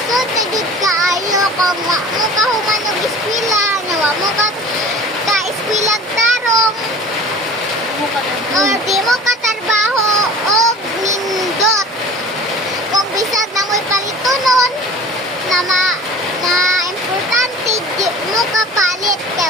na jud kaayo kung wa mo ka human og eskwela, nya wa mo ka eskwela tarong, or di mo ka trabaho og nindot. Kung bisag na mo'y palitonon na importante di mo ka palit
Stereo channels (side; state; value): both; normal; correlation 0.42